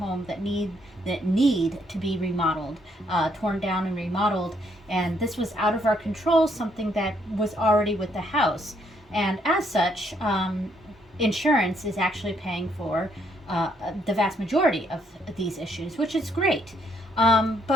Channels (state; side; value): normal; both; correlation 0.71